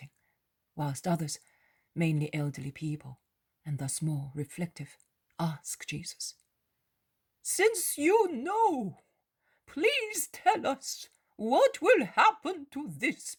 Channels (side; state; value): both; identical; correlation 1.00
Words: whilst others, mainly elderly people, and thus more reflective, ask Jesus, "Since you know, please tell us what will happen to this